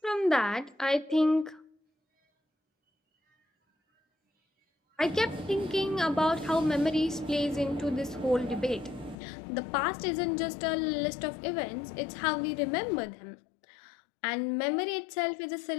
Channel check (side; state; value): right; drops out; at 9.2 s